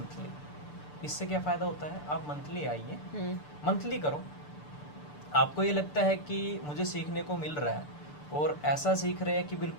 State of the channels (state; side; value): late; right; 6.8 ms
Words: इससे क्या फ़ायदा होता है, आप मंथली आइए, मंथली करो, आपको ये लगता है कि मुझे सीखने को मिल रहा है, और ऐसा सीख रहे हैं कि